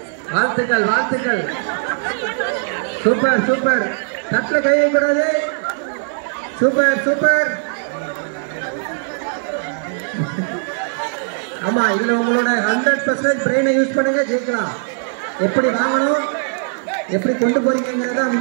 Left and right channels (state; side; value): silent; left; 66 dB below the other